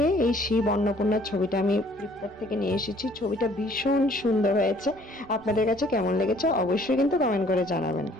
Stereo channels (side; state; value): both; normal; correlation 0.59